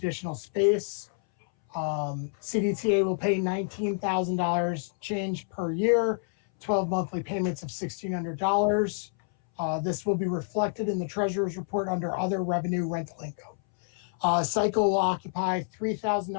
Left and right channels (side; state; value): right; silent; 59 dB below the other